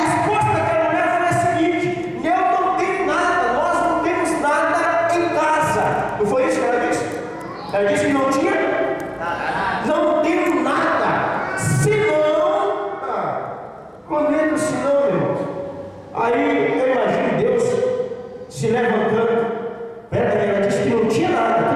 daquela mulher foi a seguinte: eu não tenho nada, nós não temos nada em casa. Não foi isso que ela disse? Ela disse que não tinha? Não tenho nada, senão. Quando entra o senão, irmãos, aí eu imagino Deus se levantando. Ela disse que não tinha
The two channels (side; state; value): both; identical; correlation 1.00